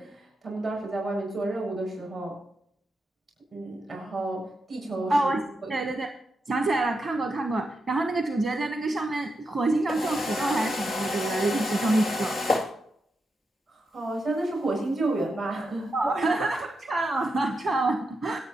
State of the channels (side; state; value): both; normal; correlation 0.86